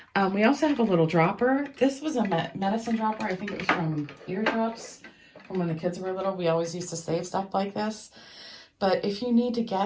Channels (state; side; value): identical; both; correlation 1.00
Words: We also have a little dropper. This was a medicine dropper. I think it was from Eardrops from when the kids were little. We always used to save stuff like this. But if you need to